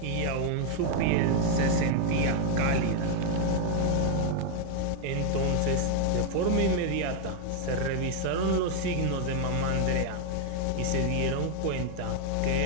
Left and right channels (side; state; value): both; different; correlation 0.00